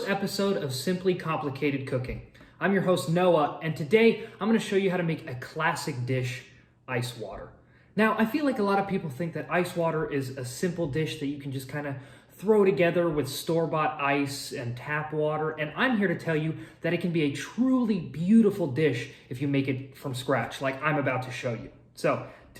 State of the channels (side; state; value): both; identical; correlation 1.00